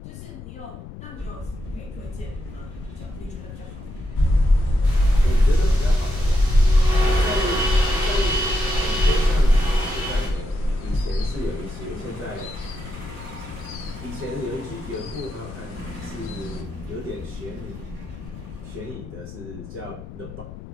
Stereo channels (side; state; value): left; noise; rumble, 13 dB below the sound